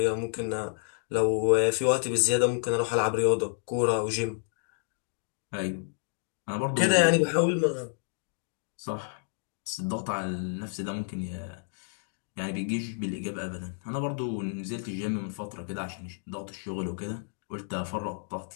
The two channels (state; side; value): silent; right; digital silence